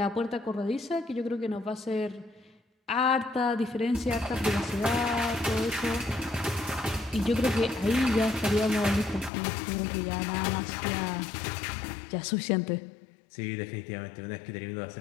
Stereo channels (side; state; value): right; drops out; at 9.3 s